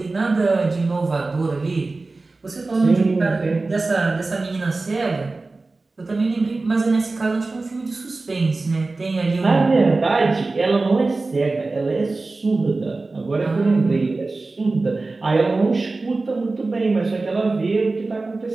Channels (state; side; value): quieter; left; 3.5 dB